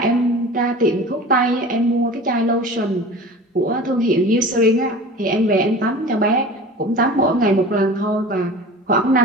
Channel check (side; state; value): both; normal; correlation 0.38